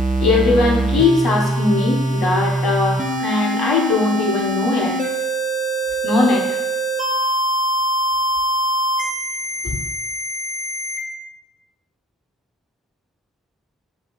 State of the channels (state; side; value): normal; both; correlation 0.53